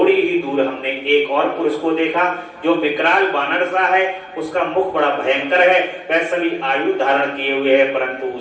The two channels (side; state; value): both; identical; correlation 1.00